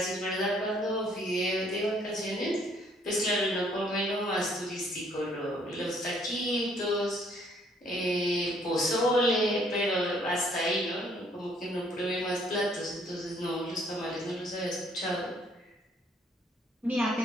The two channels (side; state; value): both; normal; correlation 0.64